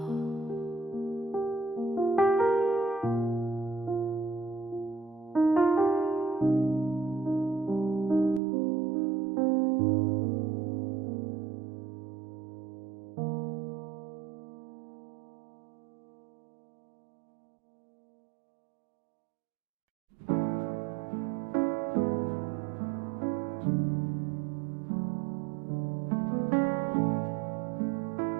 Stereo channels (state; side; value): drops out; left; at 8.4 s